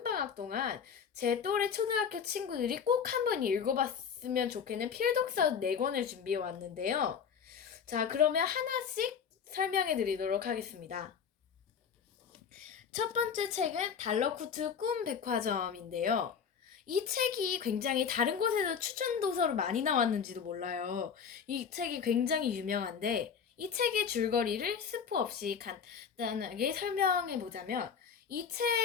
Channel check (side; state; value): right; quieter; 6.9 dB